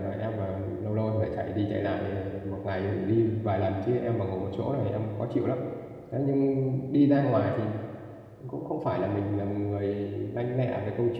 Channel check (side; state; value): both; identical; correlation 1.00